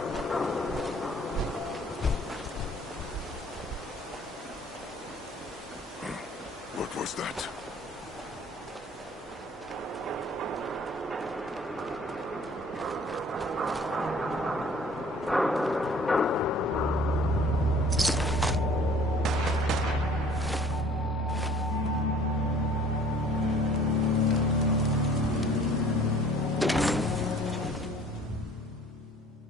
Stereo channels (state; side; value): normal; both; correlation 0.53